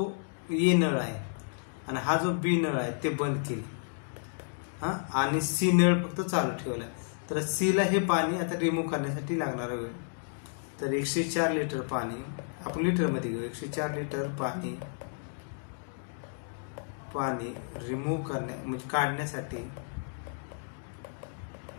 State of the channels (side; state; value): right; silent; digital silence